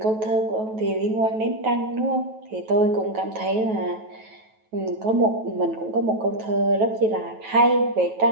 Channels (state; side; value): late; left; 9.2 ms